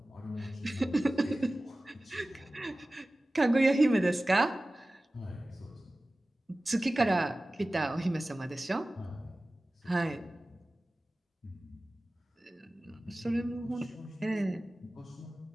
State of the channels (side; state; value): both; normal; correlation 0.97